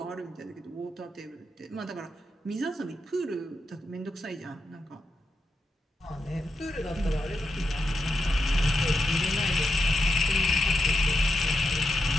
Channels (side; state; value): both; normal; correlation 0.86